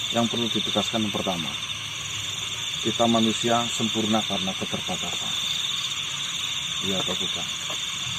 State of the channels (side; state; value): both; identical; correlation 1.00